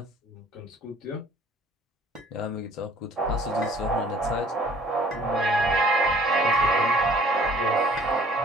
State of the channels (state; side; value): normal; both; correlation 0.54